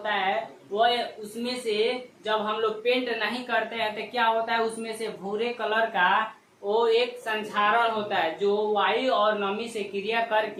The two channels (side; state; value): both; identical; correlation 1.00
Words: है, वो उसमें से जब हम लोग पेंट नहीं करते हैं तो क्या होता है, उसमें से भूरे कलर का वो एक संचारण होता है जो वायु और नमी से क्रिया